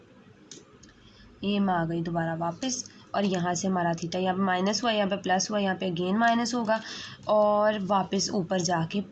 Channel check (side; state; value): both; identical; correlation 1.00